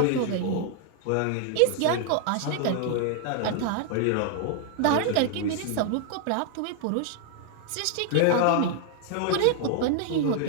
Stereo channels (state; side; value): different; both; correlation 0.00